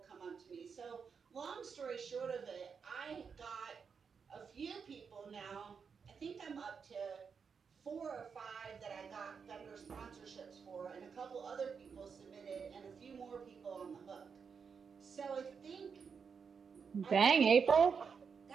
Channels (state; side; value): quieter; left; 6.0 dB